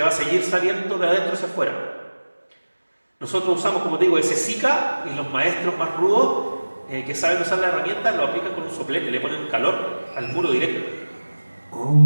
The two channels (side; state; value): both; inverted; correlation -1.00